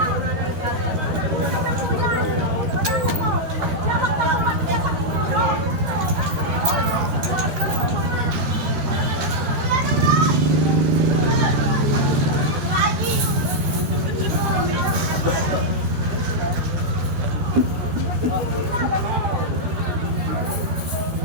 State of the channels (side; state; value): left; late; 13 ms